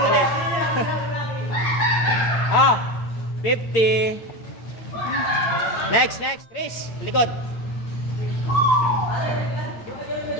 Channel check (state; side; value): late; right; 8.8 ms